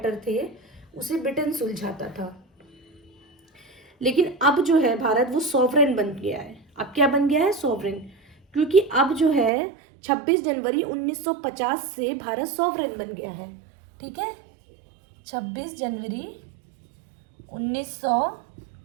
थे उसे ब्रिटेन सुलझाता था। लेकिन अब जो है भारत वो सॉवरेन बन गया है। अब क्या बन गया है? सॉवरेन। क्योंकि अब जो है 26 जनवरी 1950 से भारत सॉवरेन बन गया है। ठीक है, 26 जनवरी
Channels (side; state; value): left; drops out; at 9.5 s